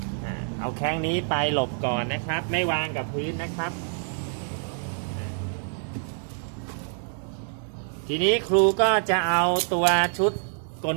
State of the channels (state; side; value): silent; left; 60 dB below the other